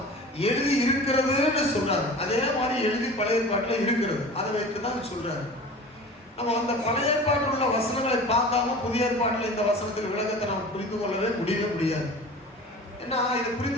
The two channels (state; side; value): normal; both; correlation 0.38